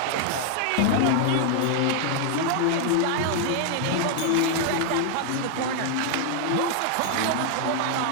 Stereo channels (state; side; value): different; both; correlation 0.00